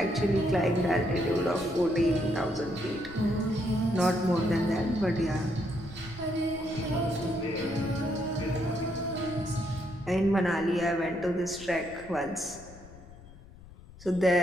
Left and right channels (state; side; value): noise; left; rumble, 19 dB below the sound